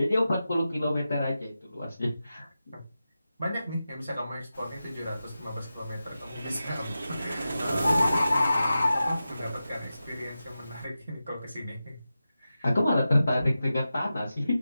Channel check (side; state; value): both; inverted; correlation -0.92